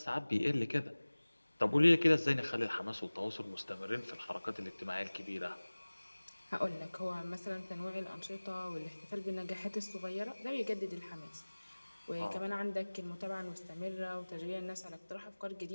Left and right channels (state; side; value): inverted; both; correlation -1.00